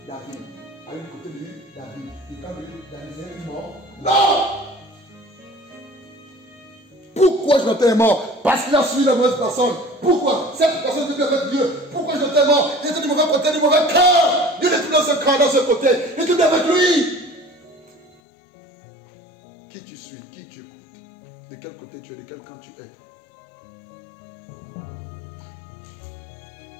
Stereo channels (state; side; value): drops out; right; at 18.2 s